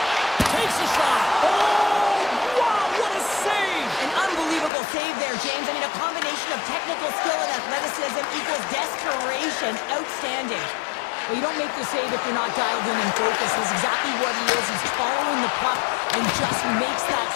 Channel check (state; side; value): drops out; right; at 4.7 s